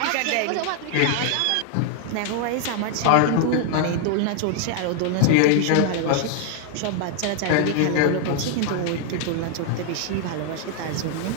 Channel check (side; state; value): both; different; correlation 0.00